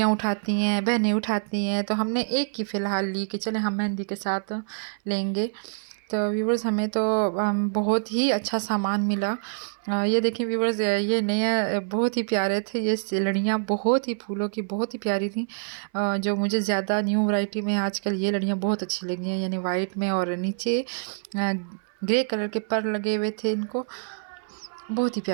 उठाती हैं, बहनें उठाती हैं, तो हमने एक की फ़िलहाल ली कि चले हम मेहंदी के साथ लेंगे। तो व्यूवर्स हमें तो बहुत ही अच्छा सामान मिला। ये देखिए व्यूवर्स, ये नए बहुत ही प्यारे थे, ये लड़ियाँ बहुत ही फूलों की बहुत ही प्यारी थी। जो मुझे ज़्यादा न्यू वैरायटी में आजकल ये लड़ियाँ बहुत अच्छी लगी हैं, यानी वाइट में और नीचे ग्रे कलर के पर लगे हुए थे इनको, बहुत ही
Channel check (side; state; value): left; silent; 61 dB below the other